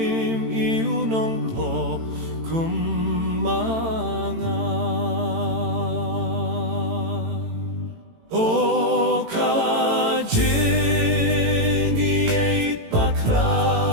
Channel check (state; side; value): late; left; 18 ms